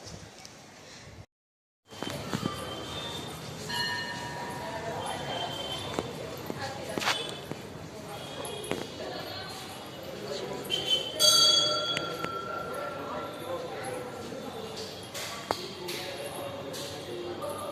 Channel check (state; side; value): identical; both; correlation 1.00